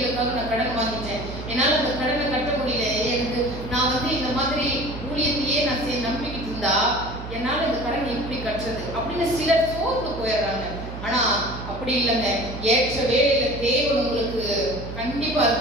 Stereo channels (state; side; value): noise; right; hum, 9 dB below the sound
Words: நான் கடன் வாங்கிட்டேன், என்னால் அந்த கடனை கட்ட முடியல, எனக்கு நான் இந்த மாதிரி ஊழியத்தையே நான் நம்பிக்கிட்டு இருந்தா என்னால் இந்த கடன் எப்படி கட்டுறது அப்படின்னு சிலர் சோர்ந்து போயிடுறாங்க. ஆனா அப்படி இல்லைங்க. ஏற்ற வேலையில தேவன் உங்களுக்கு கண்டிப்பா